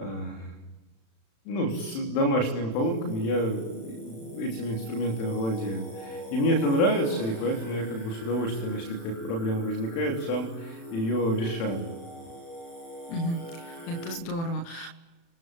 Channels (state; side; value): late; right; 36 ms